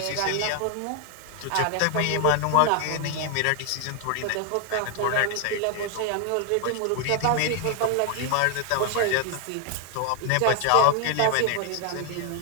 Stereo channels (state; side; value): different; both; correlation 0.00